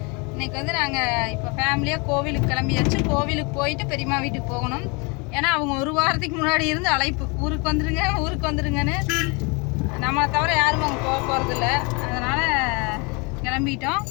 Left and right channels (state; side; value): quieter; right; 30.3 dB